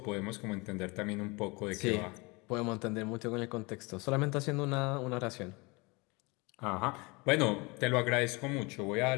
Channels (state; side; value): quieter; right; 26.5 dB